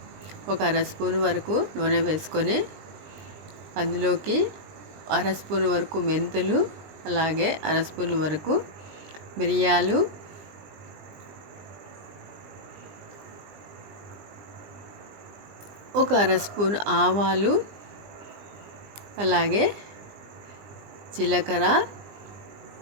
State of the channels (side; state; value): left; late; 20 ms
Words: ఒక అర స్పూన్ వరకు నూనె వేసుకొని అందులోకి అర స్పూన్ వరకు మెంతులు, అలాగే అర స్పూన్ వరకు మిరియాలు, ఒక అర స్పూన్ ఆవాలు, అలాగే జీలకర్ర,